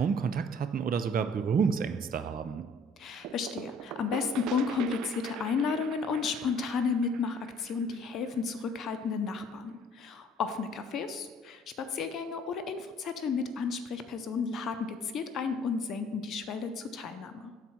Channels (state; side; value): normal; both; correlation 0.56